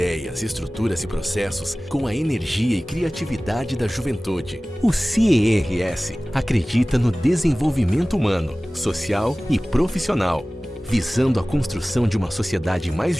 estruturas e processos com a energia e criatividade da juventude. O CERS acredita no desenvolvimento humano, social e profissional, visando a construção de uma sociedade mais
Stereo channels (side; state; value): both; normal; correlation 0.98